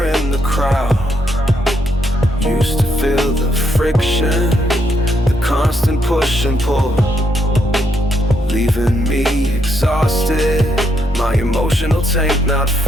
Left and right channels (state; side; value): normal; both; correlation 0.77